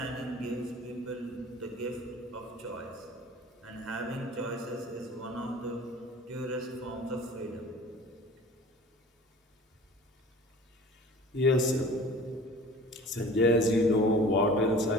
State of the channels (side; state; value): both; normal; correlation 0.43